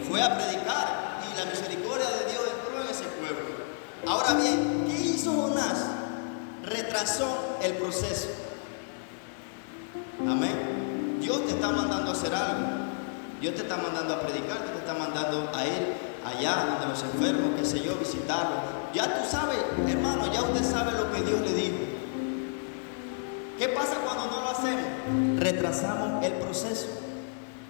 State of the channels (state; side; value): silent; right; 57 dB below the other